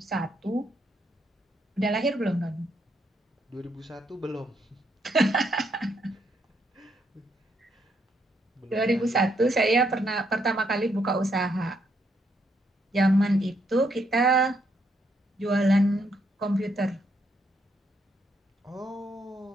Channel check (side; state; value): both; normal; correlation 0.75